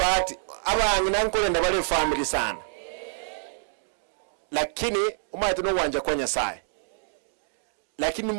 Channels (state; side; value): silent; left; digital silence